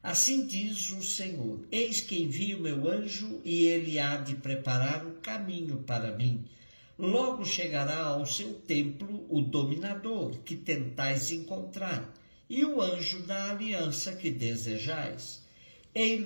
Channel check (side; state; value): both; inverted; correlation -1.00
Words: Assim diz o Senhor: eis que envio meu anjo e ele há de preparar o caminho para mim. Logo chegará ao seu templo o dominador que tentais encontrar, e o anjo da aliança que desejais.